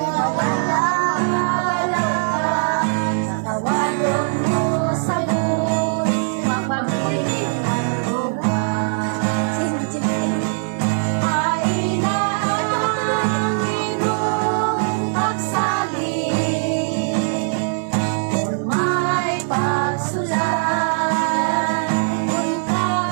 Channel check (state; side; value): silent; left; 63 dB below the other